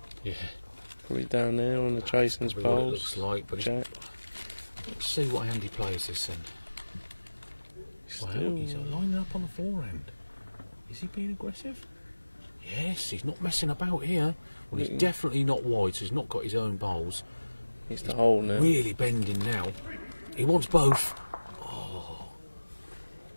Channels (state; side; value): inverted; both; correlation -1.00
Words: Yeah, Probably down there on the chasing's probably what it poles. looks like, but Jack. let's see what hand he plays this in. Wow, he's lining up on the forehand. Is he being aggressive? Yes, he's not messing about here. Well, he's definitely not wide, so he's not got his own bowls. He's the hole now. Really bending now. He wants both. Oh.